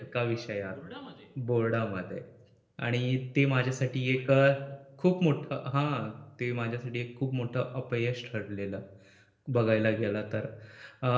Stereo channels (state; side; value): identical; both; correlation 1.00